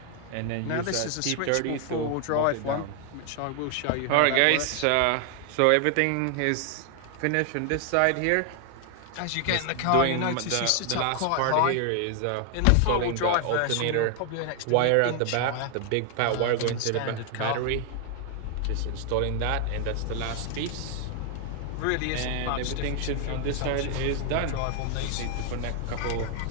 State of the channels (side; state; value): both; different; correlation 0.00